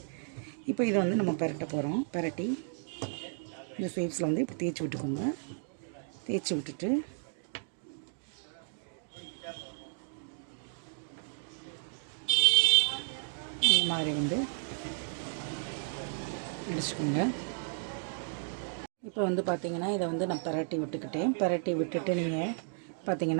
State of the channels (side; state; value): left; silent; digital silence